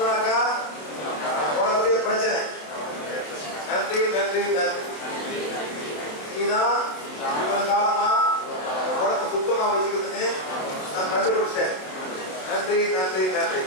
உனக்குடைய பிரச்சனை. நன்றி நன்றி நன்றி. நீதான் இவ்வளவு காலமா உடம்பு சுத்தமா வச்சுக்கிறதுன்னு நான் கண்டுபிடிச்சேன். நன்றி நன்றி நன்றி.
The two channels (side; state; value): right; late; 27 ms